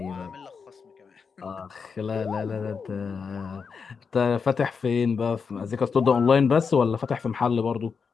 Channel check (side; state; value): right; quieter; 5.6 dB